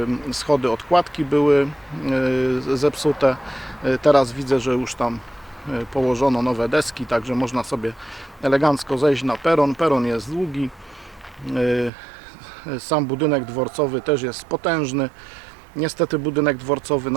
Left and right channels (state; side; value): drops out; left; at 11.9 s